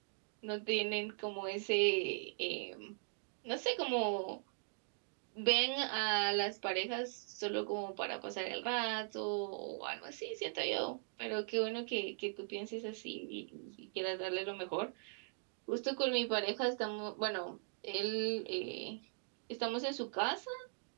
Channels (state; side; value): silent; left; digital silence